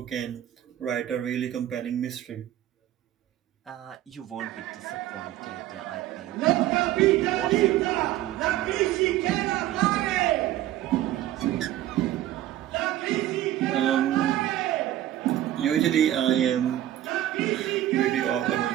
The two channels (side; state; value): left; quieter; 13.3 dB